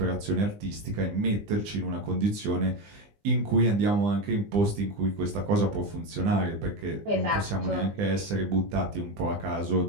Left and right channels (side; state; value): left; late; 20 ms